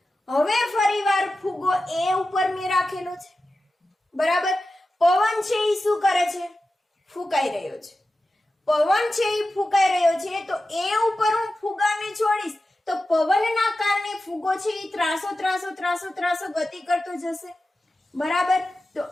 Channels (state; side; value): normal; both; correlation 0.93